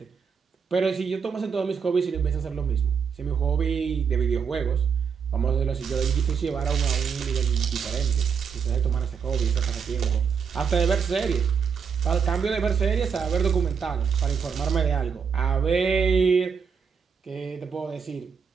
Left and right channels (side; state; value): left; quieter; 6.4 dB